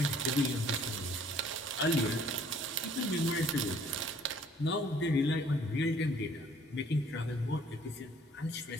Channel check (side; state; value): both; normal; correlation 0.58